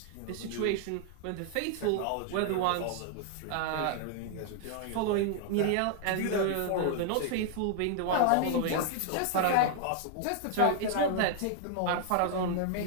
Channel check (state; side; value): different; both; correlation 0.00